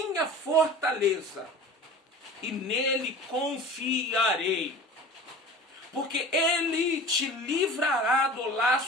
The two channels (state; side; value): normal; both; correlation 0.39